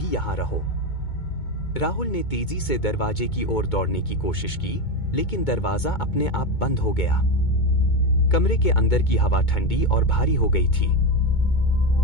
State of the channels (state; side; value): late; right; 2.2 ms